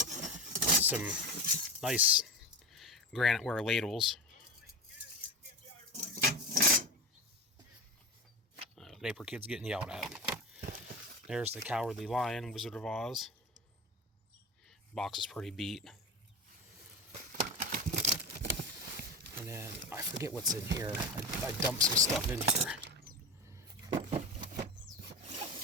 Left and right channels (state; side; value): normal; both; correlation 0.25